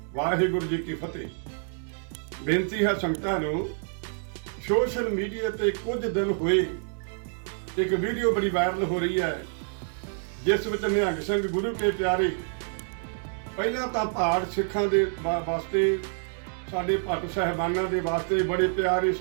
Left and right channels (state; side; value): silent; left; digital silence